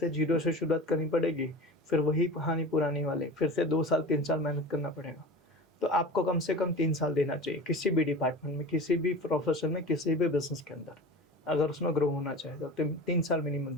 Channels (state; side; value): normal; both; correlation 0.34